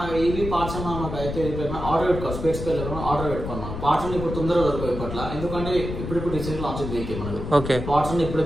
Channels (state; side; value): noise; left; rumble, 6 dB below the sound